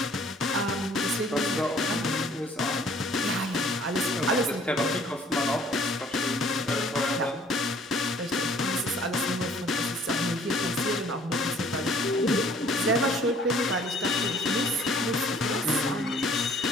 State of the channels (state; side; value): normal; both; correlation 0.56